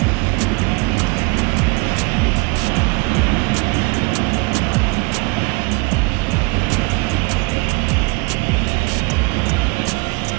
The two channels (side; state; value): left; quieter; 27.7 dB